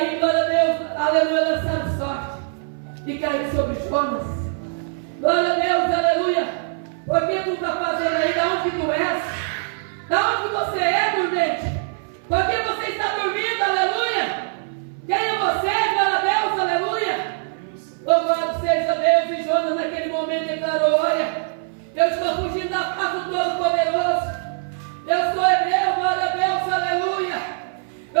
glória a Deus, aleluia, lançaram sorte e caiu sobre Jonas. Glória a Deus, aleluia. Porque tu está fazendo aí, da onde tu és? Da onde você é, dormente? Porque você está dormindo, aleluia. Quem é você, glória a Deus, aleluia. Louvado seja Deus. E Jonas naquele momento declarou: olha, eu estou fugindo da face do Todo-Poderoso. Eu sou hebreu, glória a Deus, aleluia.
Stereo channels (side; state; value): left; silent; 58 dB below the other